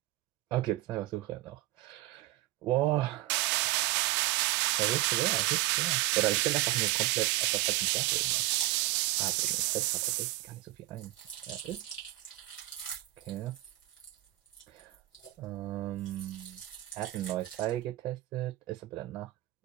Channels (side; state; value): left; quieter; 17.2 dB